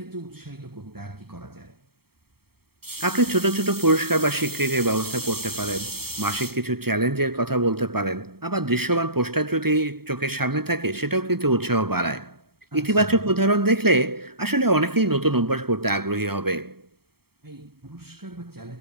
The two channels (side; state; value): left; late; 0.95 ms